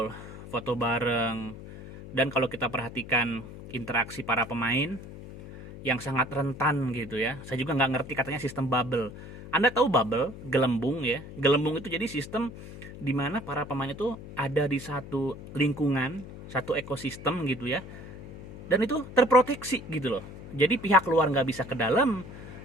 foto bareng. Dan kalau kita perhatikan interaksi para pemain yang sangat rentan gitu ya, saya juga nggak ngerti katanya sistem bubble. Anda tahu bubble, gelembung ya. Gelembung itu jadi sistem di mana para pemain itu ada di satu lingkungan, satu ekosistem gitu ya, dan itu terproteksi gitu loh. Jadi pihak luar nggak bisa ke dalam,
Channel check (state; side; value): noise; left; hum, 13 dB below the sound